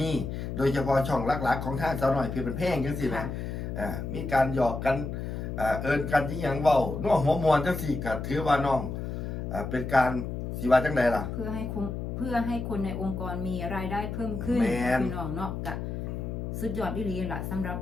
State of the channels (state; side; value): noise; left; hum, 5 dB below the sound